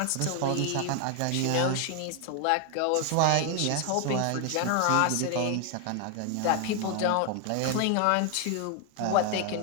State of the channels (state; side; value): different; both; correlation 0.00